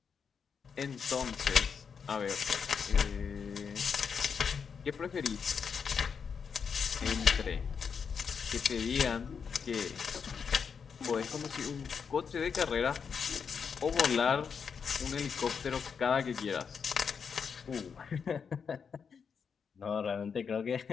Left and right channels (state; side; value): quieter; right; 6.3 dB